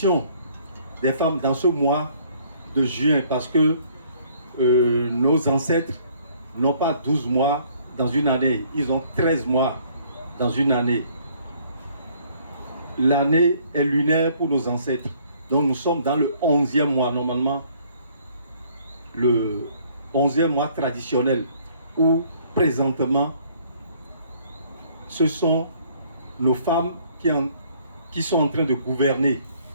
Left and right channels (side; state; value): both; inverted; correlation -0.61